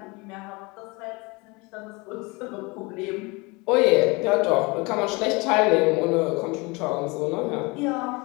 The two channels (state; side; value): quieter; right; 26.3 dB